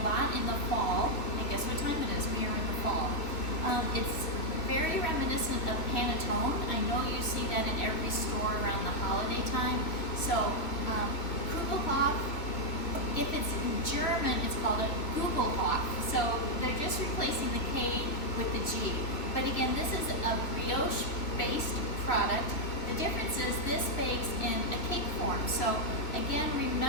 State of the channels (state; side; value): late; right; 3.0 ms